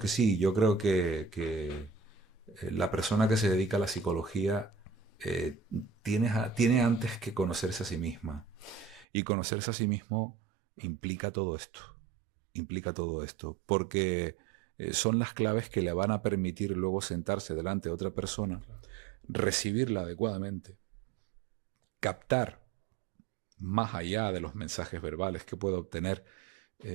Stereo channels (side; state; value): left; drops out; at 9.1 s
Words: sí, yo creo que la persona que se dedica a la psicología tiene antes que conocerse a sí misma. Y conocerse a sí mismo implica todo esto. Implica todo esto. Porque son las claves que le van a permitir luego sentarse delante de otra persona, Claro. recibirla adecuadamente, captar más allá de los mensajes verbales que puede obtener